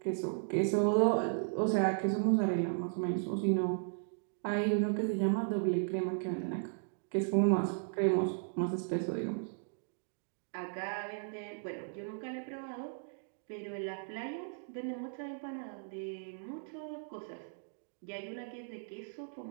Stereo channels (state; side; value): silent; left; digital silence